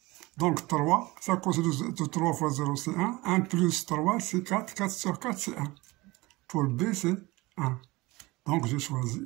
Donc, 3, ça cos de 3 fois 0, c'est 1. 1 plus 3, c'est 4. 4 sur 4, c'est 1. Pour B, c'est 1. Donc, j'ai choisi.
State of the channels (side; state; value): left; quieter; 21.7 dB